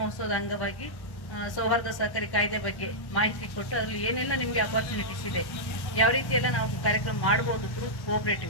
ಅಂಗವಾಗಿ ಸೌಹಾರ್ದ ಸಹಕಾರಿ ಕಾಯ್ದೆ ಬಗ್ಗೆ ಮಾಹಿತಿ ಕೊಟ್ಟು ಅದರಲ್ಲಿ ಏನೆಲ್ಲ ನಿಮಗೆ ಅಪರ್ಚುನಿಟೀಸ್ ಇದೆ, ಯಾವ ರೀತಿ ಎಲ್ಲ ನಾವು ಕಾರ್ಯಕ್ರಮ ಮಾಡಬಹುದು ಥ್ರೂ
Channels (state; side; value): late; right; 1.1 ms